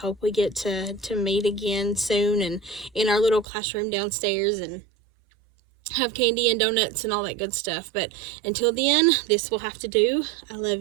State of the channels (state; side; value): drops out; left; at 3.5 s